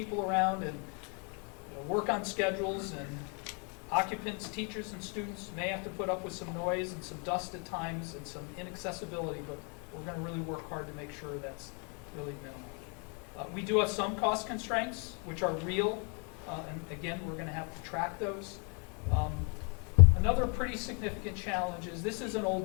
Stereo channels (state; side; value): quieter; right; 36.3 dB